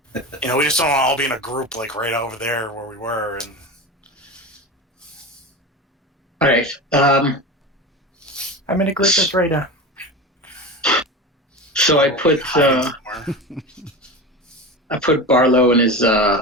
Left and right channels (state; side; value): normal; both; correlation 0.27